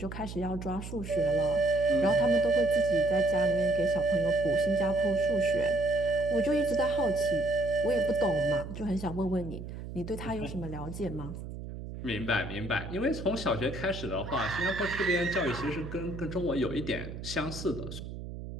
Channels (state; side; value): noise; right; hum, 9 dB below the sound